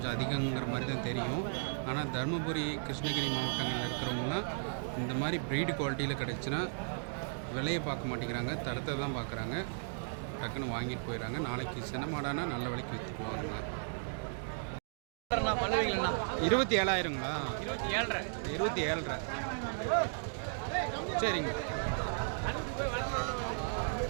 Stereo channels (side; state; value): left; silent; digital silence